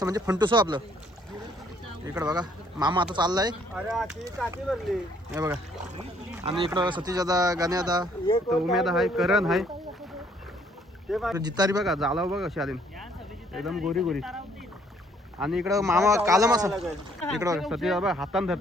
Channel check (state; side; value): normal; both; correlation 0.64